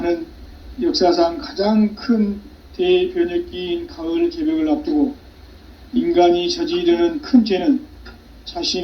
역사상 가장 큰 대변혁기인 가을 개벽을 앞두고 인간이 저지르는 큰 죄는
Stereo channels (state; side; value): identical; both; correlation 1.00